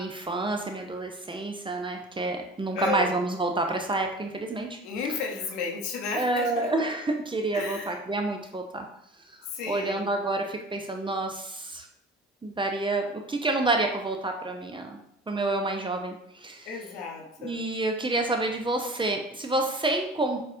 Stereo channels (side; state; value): both; normal; correlation 0.40